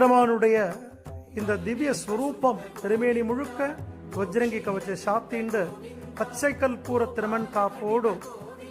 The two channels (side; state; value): both; identical; correlation 1.00